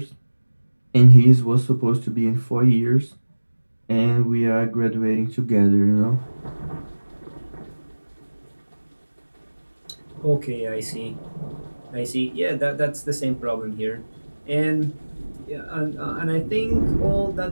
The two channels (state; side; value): inverted; both; correlation -1.00